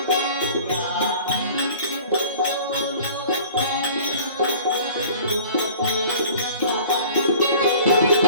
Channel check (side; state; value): both; inverted; correlation -0.46